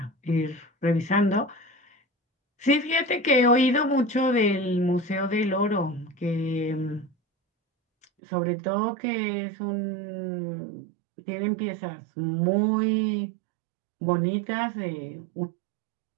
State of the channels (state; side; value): drops out; left; at 8.1 s